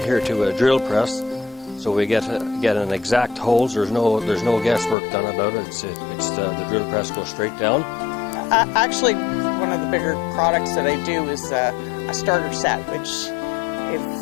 to a drill press, so we get an exact holes. There's no guesswork done about it. It's the drill press goes straight down. Actually, one of the bigger products that I do is a starter set, which, if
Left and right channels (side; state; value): right; drops out; at 5.0 s